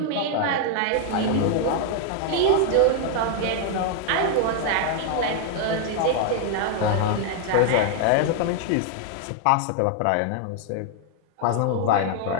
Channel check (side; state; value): both; different; correlation 0.00